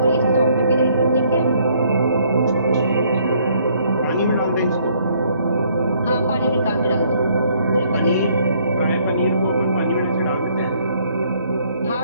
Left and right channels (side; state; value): both; inverted; correlation -0.65